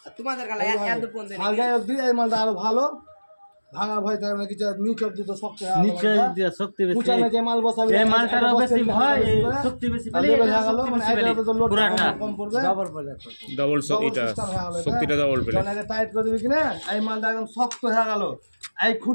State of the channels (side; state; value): both; inverted; correlation -1.00